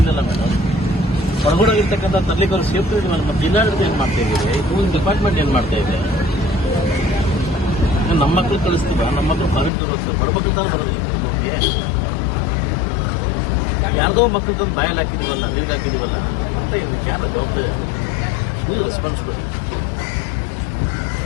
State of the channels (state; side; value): drops out; right; at 9.7 s